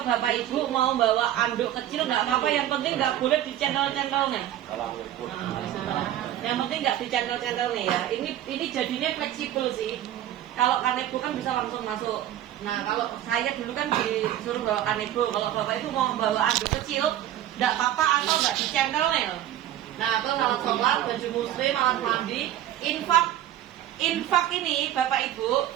Bapak Ibu mau bawa anduk kecil nggak apa-apa. Yang penting nggak boleh dicendol-cendol nih. Yang penting nggak dicendol-cendol nih ya. Ini jadinya fleksibel sih. Kalau kanebo kan bisa langsung masuk. Nah kalau saya dulu kan disuruh bawa kanebo. Kalau Bapak itu mau bawa anduk kecil, nggak apa-apa atau nggak dicendol nih. Nah terus alat sholat, baju muslim, alat mandi, infak ini Bapak Ibu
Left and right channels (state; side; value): quieter; left; 12.3 dB